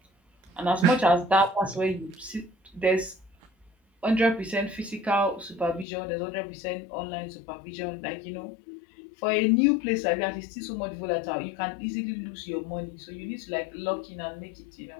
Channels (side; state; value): right; drops out; at 5.9 s